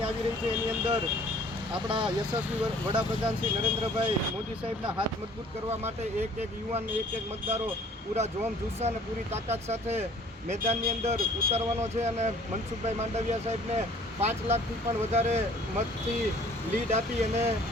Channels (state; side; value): normal; both; correlation 0.53